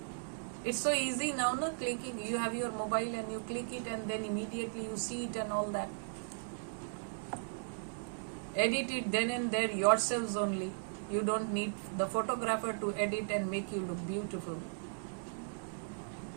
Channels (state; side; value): silent; left; digital silence